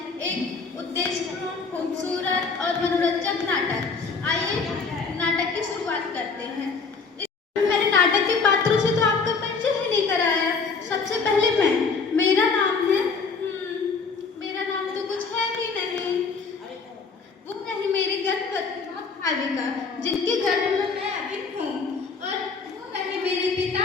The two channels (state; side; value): quieter; right; 4.8 dB